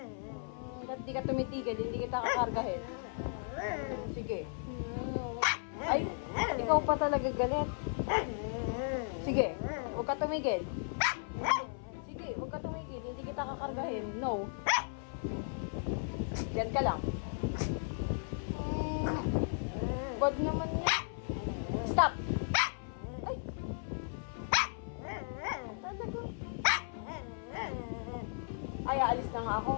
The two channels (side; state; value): right; silent; 54 dB below the other